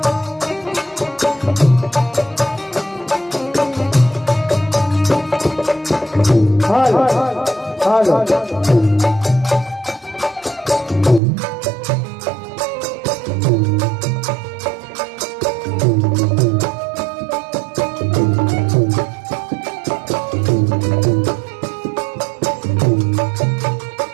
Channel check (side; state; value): left; drops out; at 11.2 s